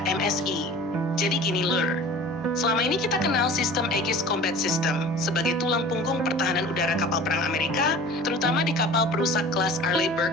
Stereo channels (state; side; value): normal; both; correlation 0.42